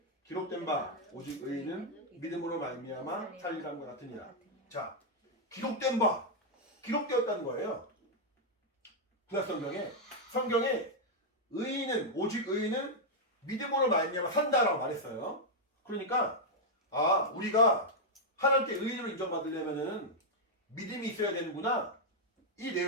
기록된 바 오직 의인은 믿음으로 말미암아 살리람과 같으니라. 자, 기록된 바 기록되었다는 거예요. 성경에 의인은 오직 의인은 믿음으로 말미암아 산다라고 말했어요. 그러니까 우리가 하나님께 의인으로 인정받으려면은 믿음이 있어야 되는구나. 이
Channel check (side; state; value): both; normal; correlation -0.03